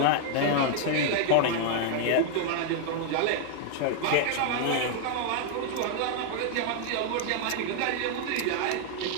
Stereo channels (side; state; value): both; different; correlation 0.00